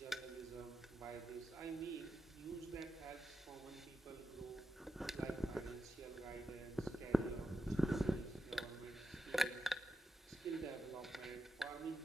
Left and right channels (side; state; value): both; normal; correlation 0.88